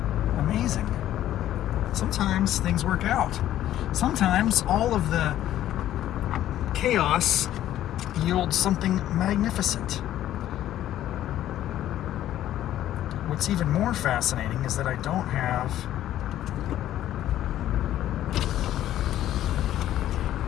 Amazing. Sometimes things work out. Sometimes all of the chaos yields something magnificent. What's even more fascinating is that I don't have...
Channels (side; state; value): right; quieter; 12.6 dB